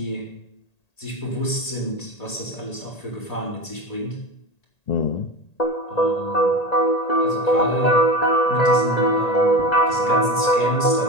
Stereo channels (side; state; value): right; late; 1.8 ms